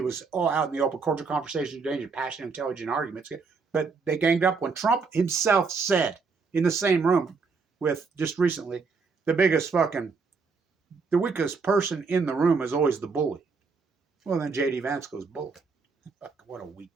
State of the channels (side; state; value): left; quieter; 4.8 dB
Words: was all out in the open, cordial conversation, danger, passionate, intelligent arguments. But they ganged up when Trump himself said in the same room with, just recently, the weakest person in the room is always the bully. Well, then J.D. Vance goes, bully. What a